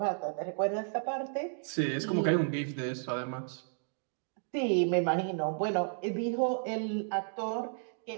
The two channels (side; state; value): left; silent; digital silence